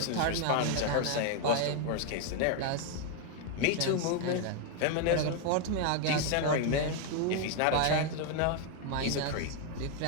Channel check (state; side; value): different; both; correlation 0.01